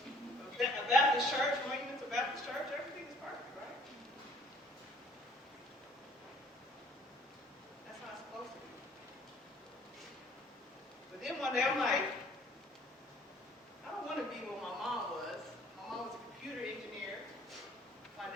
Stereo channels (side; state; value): both; normal; correlation 0.56